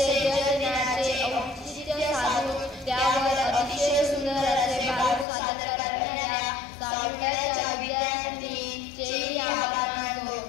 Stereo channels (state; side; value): drops out; right; at 5.2 s